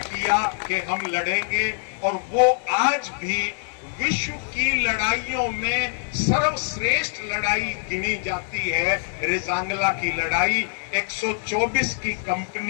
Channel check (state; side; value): silent; right; digital silence